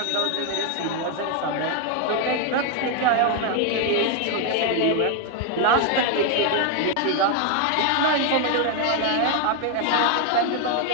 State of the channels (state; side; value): different; both; correlation 0.01